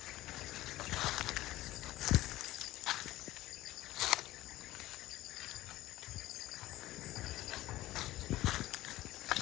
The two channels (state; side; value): quieter; right; 16.3 dB